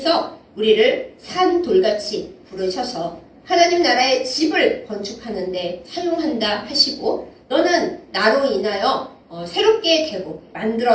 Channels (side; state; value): both; identical; correlation 1.00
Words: 우리를 산돌같이 부르셔서 하나님 나라의 집을 건축하는 데 사용한다 하시고 너는 나로 인하여 새롭게 되고